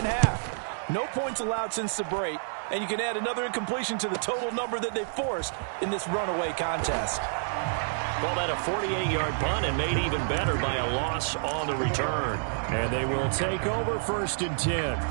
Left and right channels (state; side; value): silent; left; digital silence